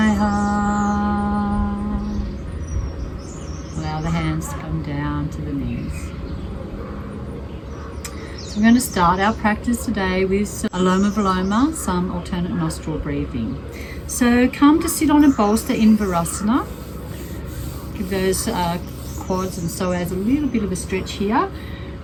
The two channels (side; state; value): both; identical; correlation 1.00